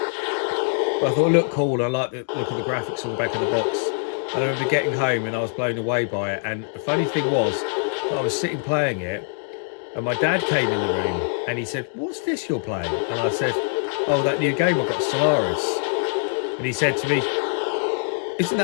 but I thought it looked cool. I liked the look of the graphics on the back of the box. And I remember getting home and I was blown away by it. And the funny thing was, I was sitting playing it, and my dad came in the room and he said, "What's this you're playing?" And I said, "Oh, that new game I got, Stellaris." And he said to me, "Isn't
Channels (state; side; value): silent; right; digital silence